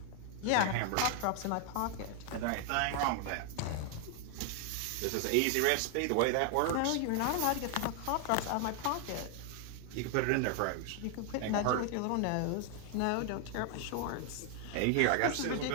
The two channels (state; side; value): different; both; correlation 0.00